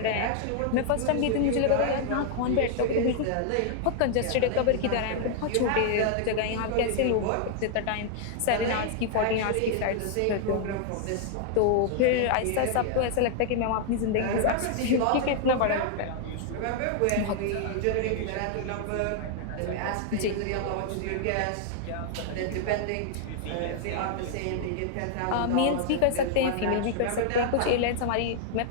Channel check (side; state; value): both; different; correlation 0.00